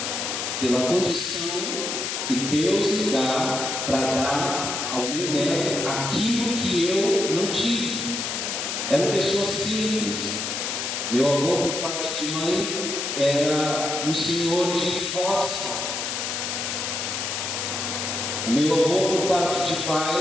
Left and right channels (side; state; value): left; noise; hiss, 3 dB below the sound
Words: Pela condição que Deus me dá para dar ao meu neto aquilo que eu não tive. Eram pessoas simples. Meu avô, por parte de mãe, era um senhor de roça. O meu avô, por parte de